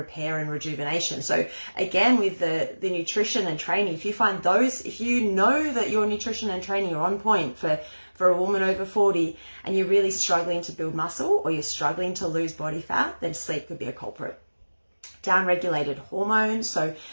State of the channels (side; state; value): both; inverted; correlation -1.00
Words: and rejuvenation. So again, with the nutrition and training, if you know that your nutrition and training are on point for a woman over 40 and you're really struggling to build muscle or you're struggling to lose body fat, then sleep could be a culprit. Downregulated hormones. So